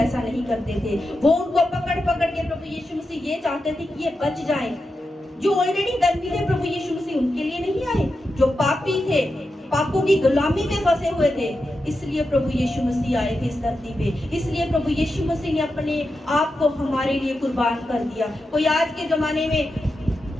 नहीं करते थे। वो उनको पकड़ पकड़ के प्रभु यीशु मसीह ये चाहते थे कि ये बच जाए। जो ऑलरेडी धर्मी थे प्रभु यीशु मसीह उनके लिए नहीं आए, जो पापी थे, पापों की गुलामी में फंसे हुए थे, इसलिए प्रभु यीशु मसीह आए थे इस धरती पे। इसलिए प्रभु यीशु मसीह ने अपने आप को हमारे लिए कुर्बान कर दिया। कोई आज के जमाने में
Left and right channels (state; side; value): normal; both; correlation 0.89